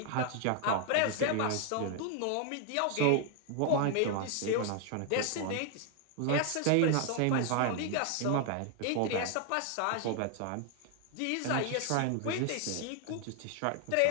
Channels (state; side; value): different; both; correlation 0.00